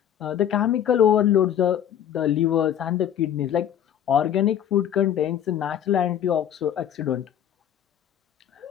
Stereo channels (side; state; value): right; quieter; 9.9 dB